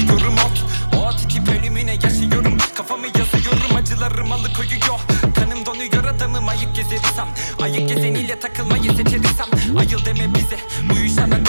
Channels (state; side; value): inverted; both; correlation -1.00